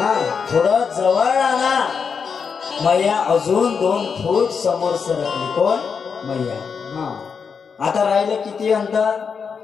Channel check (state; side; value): quieter; right; 6.0 dB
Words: थोडं जवळ आणा. मैया अजून 2 फूट समोर सरकली. कोण? मैया. आता राहिलं किती अंतर?